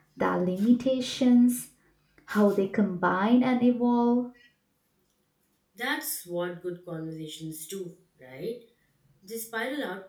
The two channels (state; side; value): identical; both; correlation 1.00